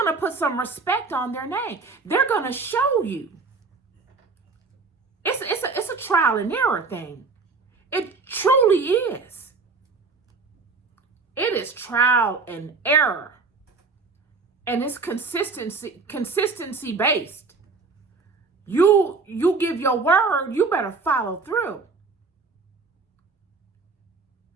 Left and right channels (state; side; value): quieter; left; 4.3 dB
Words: to put some respect on their name. They're going to show you. It's a trial and error thing. It truly is. It is trial and error. And it's consistency based. You give your word, you better follow through.